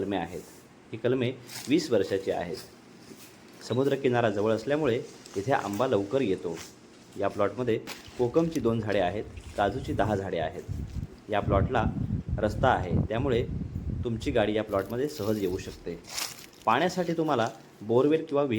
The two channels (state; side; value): identical; both; correlation 1.00